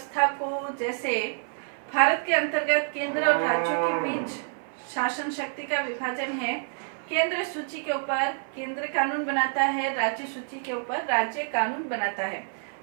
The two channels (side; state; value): left; silent; 56 dB below the other